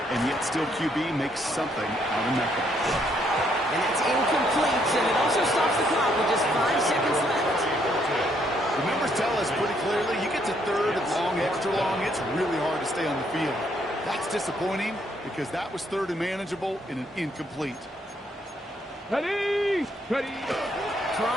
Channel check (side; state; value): both; normal; correlation 0.71